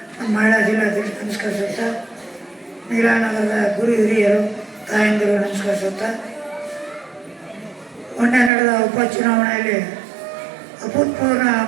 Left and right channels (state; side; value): drops out; left; at 8.5 s